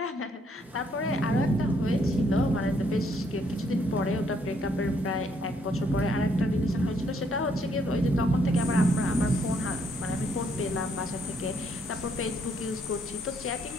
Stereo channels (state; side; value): normal; both; correlation 0.70